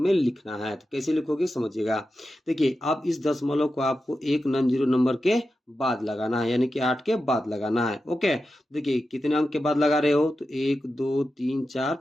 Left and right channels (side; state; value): both; normal; correlation 0.91